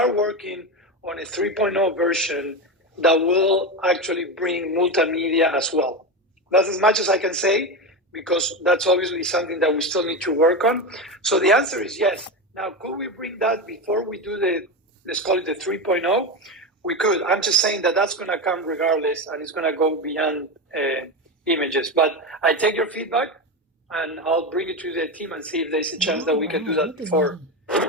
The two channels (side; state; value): both; normal; correlation 0.18